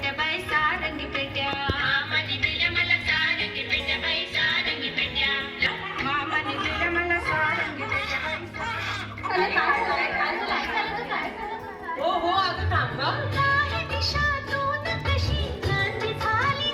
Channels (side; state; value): both; identical; correlation 1.00